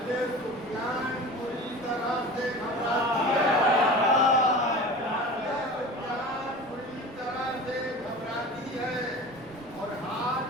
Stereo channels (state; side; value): noise; right; rumble, 24 dB below the sound